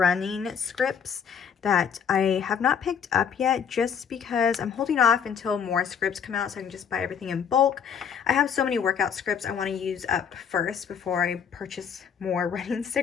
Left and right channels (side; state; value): right; quieter; 7.4 dB